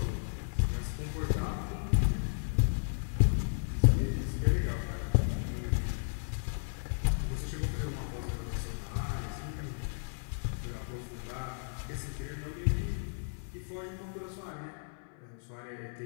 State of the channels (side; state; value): right; silent; 55 dB below the other